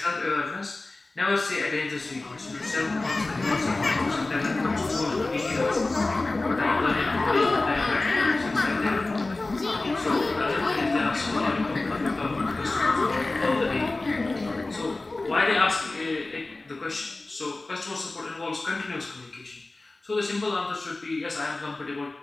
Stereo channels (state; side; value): quieter; right; 3.1 dB